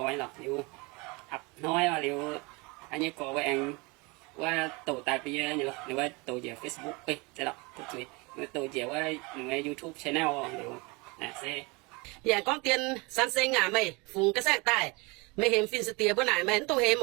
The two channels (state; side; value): quieter; left; 27.2 dB